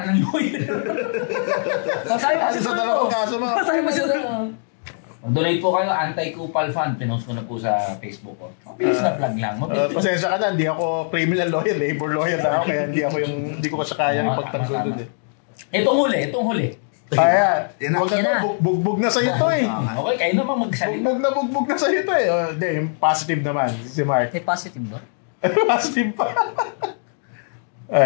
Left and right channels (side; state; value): right; silent; digital silence